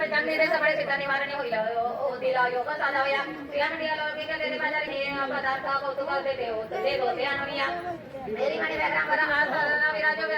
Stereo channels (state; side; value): identical; both; correlation 1.00